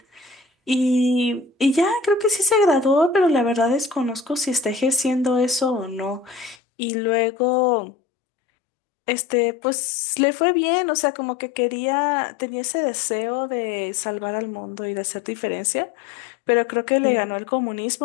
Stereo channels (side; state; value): right; drops out; at 6.6 s